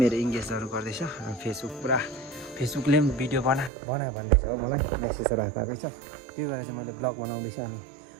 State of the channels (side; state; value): left; drops out; at 3.7 s